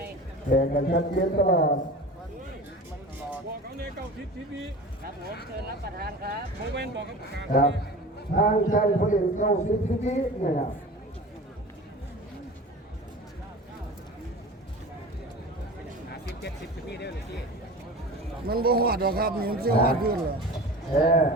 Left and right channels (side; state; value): both; normal; correlation 0.35